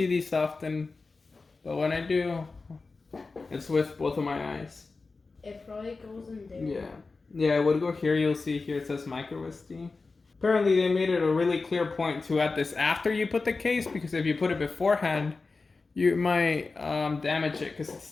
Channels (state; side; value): quieter; right; 4.0 dB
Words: these often, but when I do, it's with both of my eyes. It probably goes in there. Yeah, it would go here. You'll see here it says micro SD. Apparently they made it a really clear point to add this after you put the case, because if you put it beforehand, you might damage it because it